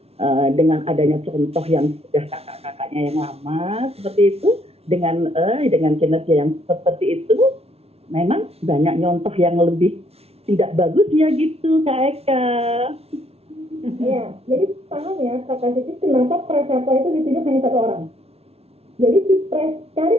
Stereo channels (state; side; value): late; left; 0.30 ms